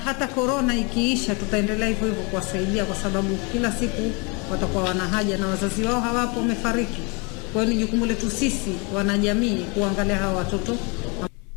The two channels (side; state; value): right; quieter; 31.3 dB